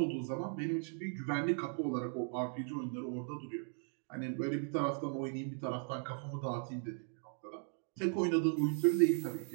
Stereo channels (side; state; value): left; silent; 53 dB below the other